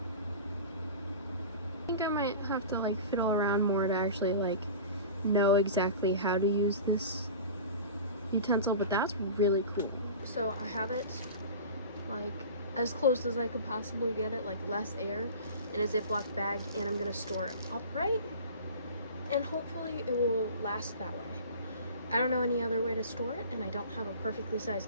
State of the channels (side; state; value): both; inverted; correlation -0.37